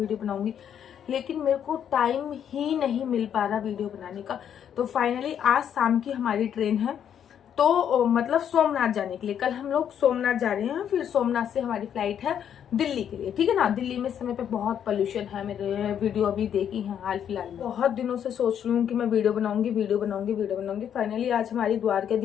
बनाऊंगी, लेकिन मेरे को टाइम ही नहीं मिल पा रहा वीडियो बनाने का। तो फाइनली आज शाम की हमारी ट्रेन है, तो मतलब सोमनाथ जाने के लिए। कल हम लोग सोमनाथ जा रहे हैं, फिर सोमनाथ से हमारी फ्लाइट है दिल्ली के लिए, ठीक है ना। दिल्ली में इस समय पे बहुत पोल्यूशन है। मेरे वीडियो अभी देखी है हाल फिलहाल में। बहुत दिनों से सोच रही हूँ कि मैं वीडियो बनाऊंगी, वीडियो बनाऊंगी, वीडियो बनाऊंगी। फाइनली आज हमारी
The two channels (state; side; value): quieter; right; 9.0 dB